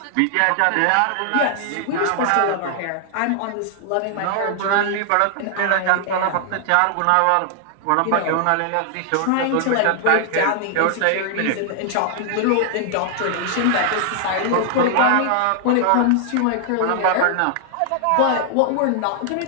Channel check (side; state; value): both; different; correlation 0.00